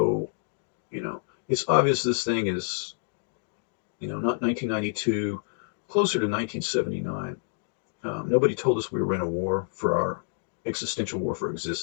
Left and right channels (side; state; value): right; silent; digital silence